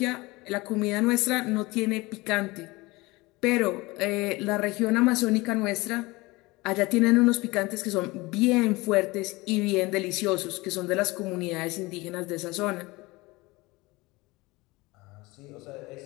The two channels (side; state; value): right; quieter; 22.4 dB